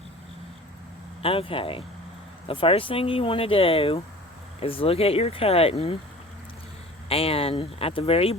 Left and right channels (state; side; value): normal; both; correlation 0.42